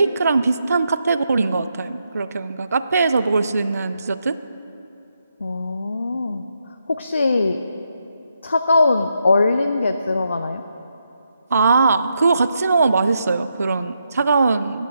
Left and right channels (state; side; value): inverted; both; correlation -0.81